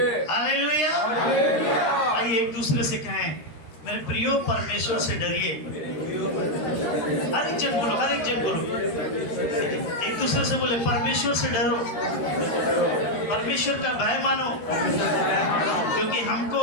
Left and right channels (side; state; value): right; late; 13 ms